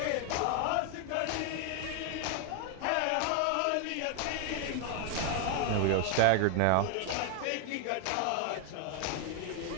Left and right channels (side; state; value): both; different; correlation 0.01